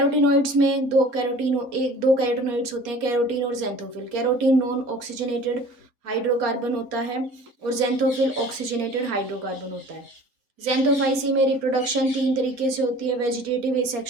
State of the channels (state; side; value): late; left; 4.2 ms